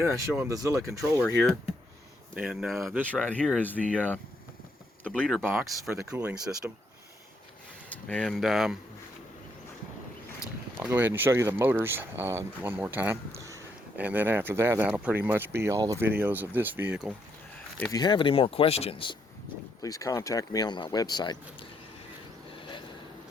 then I show them the Zilla controller here. And this right here is the bleeder box for the cooling system. And I'll go ahead and show you the motors one more time, and then after that, that'll pretty much be all the videos of this vehicle. If you have any more questions, please contact me on my website,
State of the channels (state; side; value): normal; both; correlation 0.75